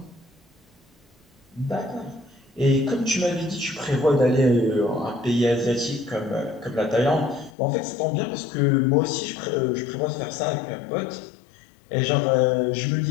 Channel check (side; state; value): right; drops out; at 7.5 s